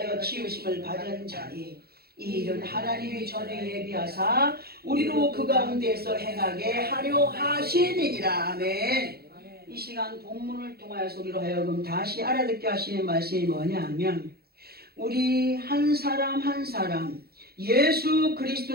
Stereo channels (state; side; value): late; left; 0.45 ms